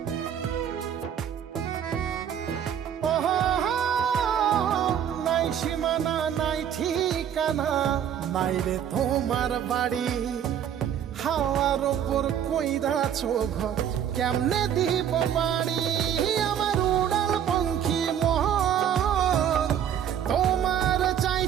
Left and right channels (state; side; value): quieter; left; 9.3 dB